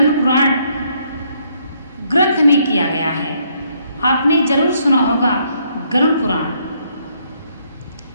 पुराण ग्रंथ में किया गया है। आपने जरूर सुना होगा गरुड़ पुराण।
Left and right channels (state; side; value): inverted; both; correlation -0.70